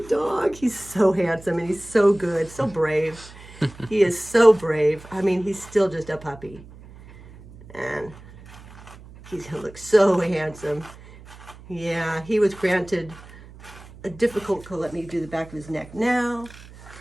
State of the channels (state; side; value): noise; right; hum, 19 dB below the sound